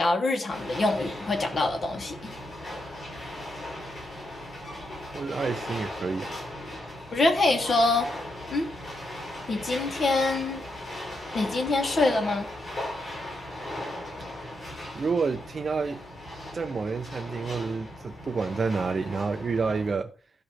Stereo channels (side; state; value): both; normal; correlation 0.81